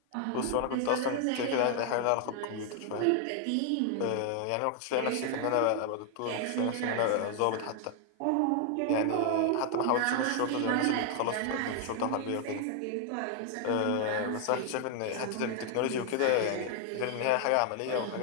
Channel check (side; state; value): both; different; correlation 0.00